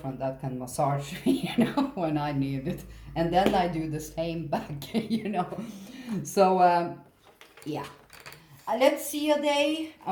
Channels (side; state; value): both; identical; correlation 1.00